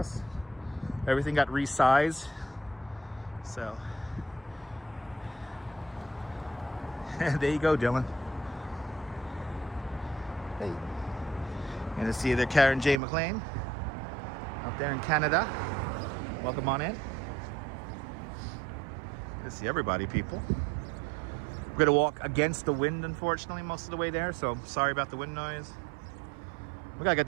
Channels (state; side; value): drops out; left; at 13.0 s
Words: Everything got resized. So there you go, Dylan. Hey. Gonna see there Karen J. McLean up there in Canada. Welcome on in. Good to see everybody, people. We're gonna walk against the wind, unfortunately, most of the way there, so sorry about the wind noise. We gotta get